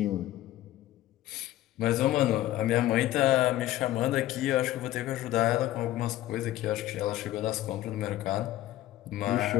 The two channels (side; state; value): right; quieter; 14.6 dB